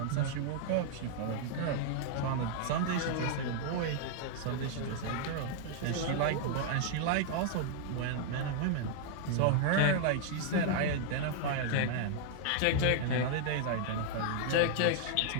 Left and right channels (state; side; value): different; both; correlation -0.01